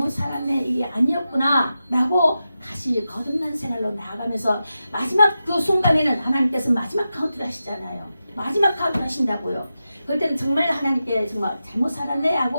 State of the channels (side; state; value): both; inverted; correlation -0.91